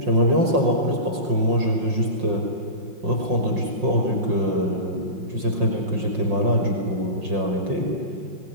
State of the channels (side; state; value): left; late; 5.6 ms